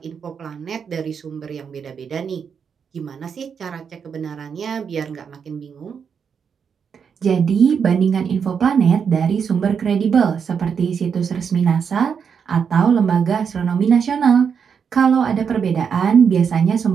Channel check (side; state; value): left; quieter; 6.8 dB